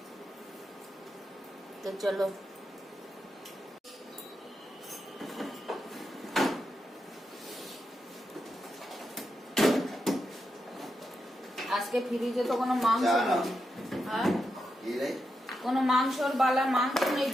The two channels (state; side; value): normal; both; correlation 0.86